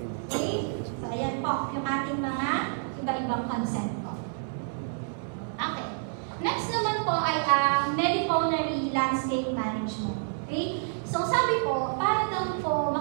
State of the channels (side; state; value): left; silent; 59 dB below the other